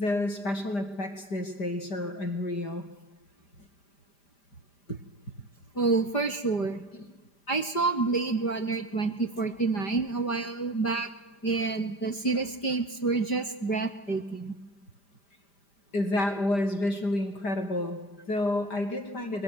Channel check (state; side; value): late; right; 5.0 ms